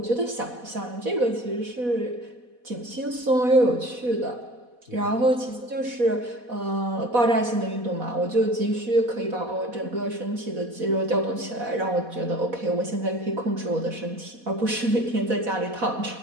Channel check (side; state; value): left; late; 4.1 ms